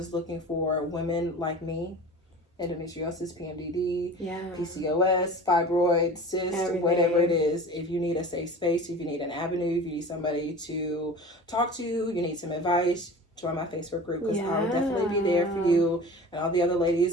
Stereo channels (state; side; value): normal; both; correlation 0.37